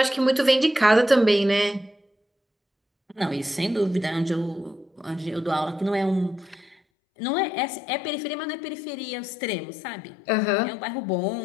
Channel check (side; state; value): right; drops out; at 6.8 s